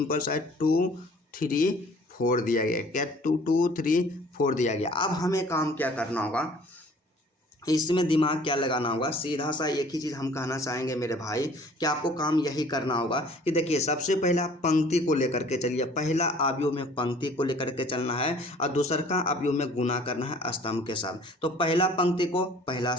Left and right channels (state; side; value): normal; both; correlation 0.53